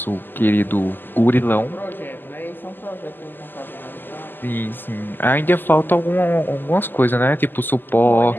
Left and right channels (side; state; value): right; late; 0.092 ms